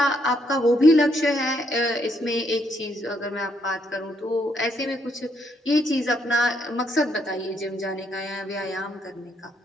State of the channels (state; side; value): normal; both; correlation 0.74